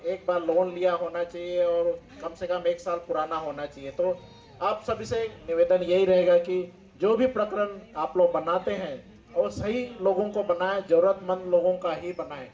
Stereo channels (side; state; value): both; identical; correlation 1.00